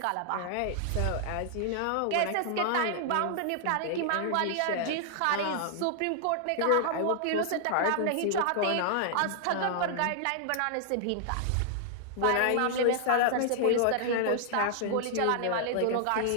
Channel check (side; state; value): both; different; correlation -0.01